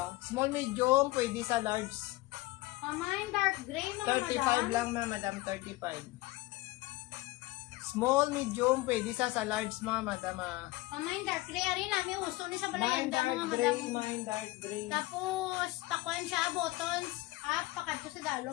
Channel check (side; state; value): right; quieter; 20.1 dB